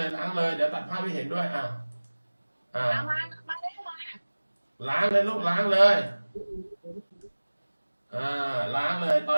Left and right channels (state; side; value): inverted; both; correlation -1.00